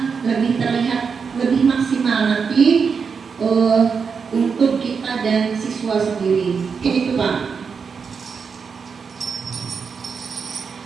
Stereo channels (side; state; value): left; quieter; 5.8 dB